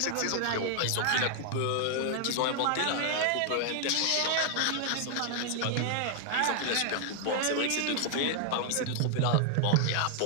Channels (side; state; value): both; different; correlation 0.00